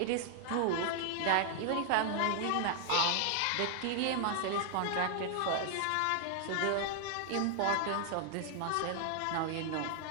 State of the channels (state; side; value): different; both; correlation 0.00